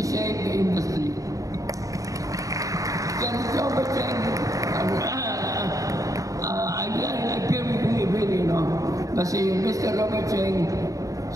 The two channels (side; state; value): left; late; 0.16 ms